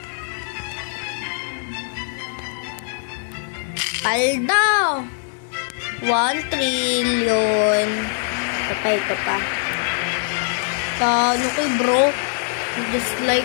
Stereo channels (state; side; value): silent; right; digital silence